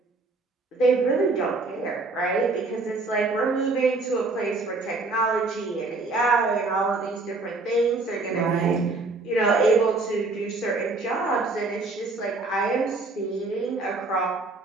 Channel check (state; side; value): quieter; left; 3.5 dB